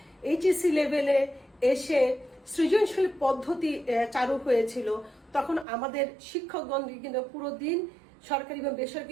লেভেলে এসে সৃজনশীল পদ্ধতি চালু হয়েছিল, তখন আমাদের শিক্ষকগণ কিন্তু পুরো দিন সরকারি এবং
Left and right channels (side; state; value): left; drops out; at 5.7 s